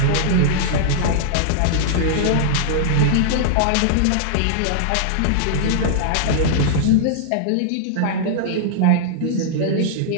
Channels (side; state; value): both; different; correlation -0.01